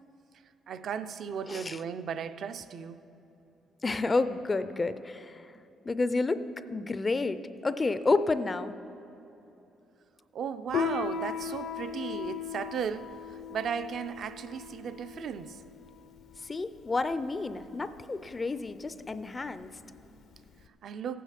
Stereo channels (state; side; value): normal; both; correlation 0.80